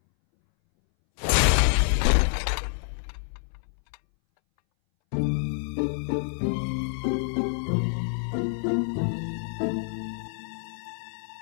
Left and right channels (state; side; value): silent; right; 60 dB below the other